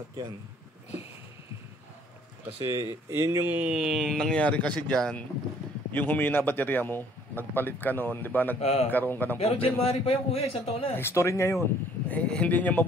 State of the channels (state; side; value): normal; both; correlation 0.59